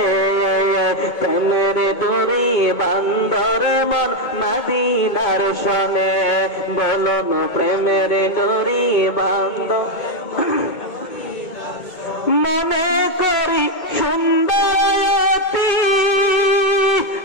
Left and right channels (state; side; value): late; right; 2.2 ms